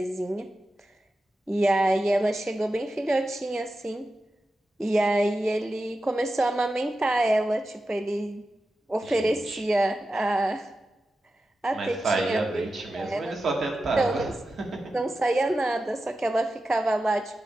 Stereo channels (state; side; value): normal; both; correlation 0.92